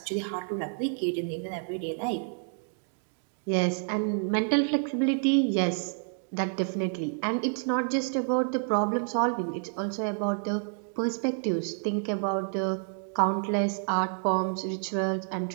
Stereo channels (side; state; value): left; silent; 58 dB below the other